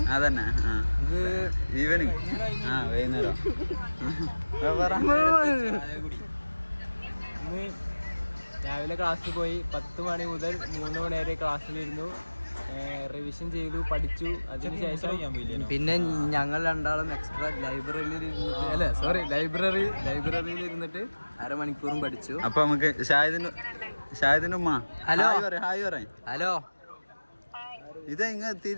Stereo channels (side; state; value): both; inverted; correlation -1.00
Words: അതന്നെ ഈവനിങ് വൈകുന്നേരം. രാവിലെ ക്ലാസ്സിൽ പോയി 10 മണി മുതൽ 3 മണി വരെ ക്ലാസ്സിലിരുന്നു, റിവിഷൻ ചെയ്തു, പഠിച്ചു. അതിനുശേഷം പിന്നെ ഞങ്ങൾ രണ്ടാളും എക്സ്ട്രാ ലൈബ്രറിയിൽ ഇരുന്നിട്ട് അരമണിക്കൂറും പഠിച്ചു. അപ്പൊ നമുക്ക് ഷാഹിദിന്റെ ഉമ്മ ഹലോ ഹായ് പറയാം. ഹലോ ഇത്